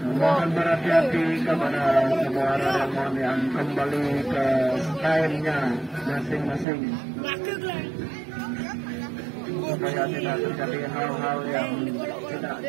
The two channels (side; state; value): left; drops out; at 6.7 s